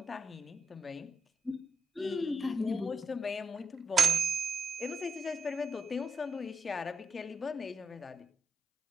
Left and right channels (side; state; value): both; normal; correlation 0.83